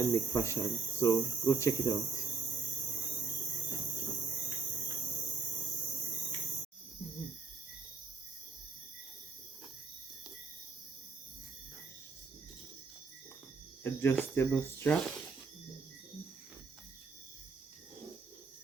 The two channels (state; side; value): quieter; left; 4.7 dB